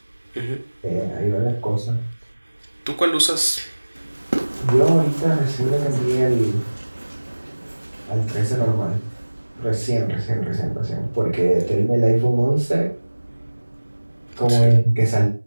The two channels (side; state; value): both; inverted; correlation -1.00